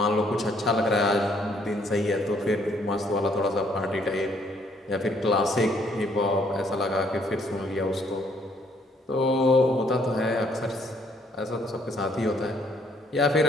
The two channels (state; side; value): normal; both; correlation 0.67